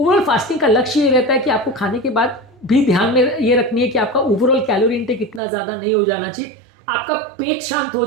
फास्टिंग का लक्ष्य ये रहता है कि आपको खाने के बाद भी ध्यान में ये रखनी है कि आपका ओवरऑल कैलोरी इंटेक इतना ज़्यादा नहीं हो जाना चाहिए, आपका पेट शांत हो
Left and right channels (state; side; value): drops out; left; at 5.4 s